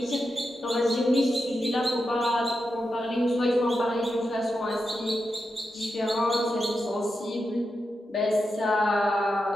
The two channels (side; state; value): both; normal; correlation 0.88